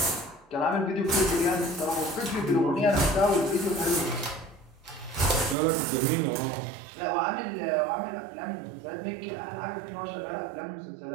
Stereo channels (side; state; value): left; drops out; at 5.6 s